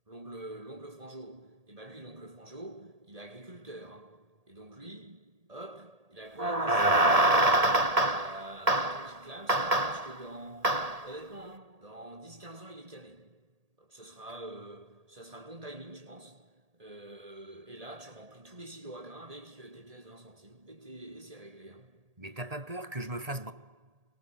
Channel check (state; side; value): late; left; 1.8 ms